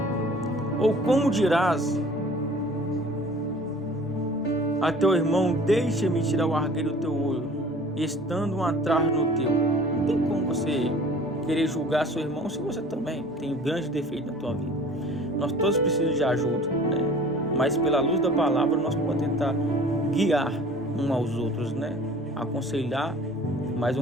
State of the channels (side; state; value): both; normal; correlation 0.47